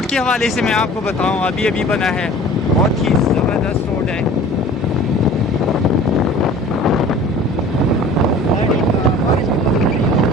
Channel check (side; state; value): both; normal; correlation 0.44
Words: के हवाले से मैं आपको बताऊं, अभी अभी बना है, बहुत ही ज़बरदस्त रोड है।